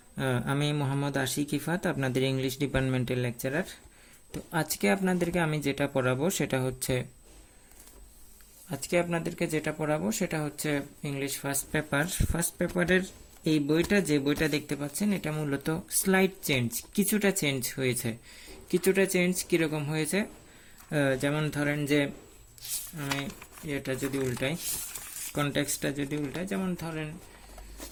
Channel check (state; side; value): identical; both; correlation 1.00